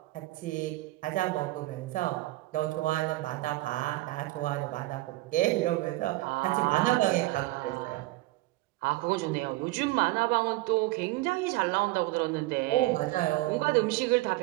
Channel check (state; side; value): quieter; left; 19.1 dB